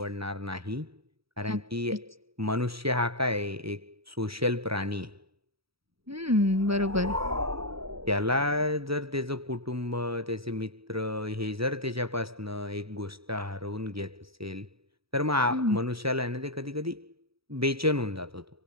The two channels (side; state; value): left; late; 0.76 ms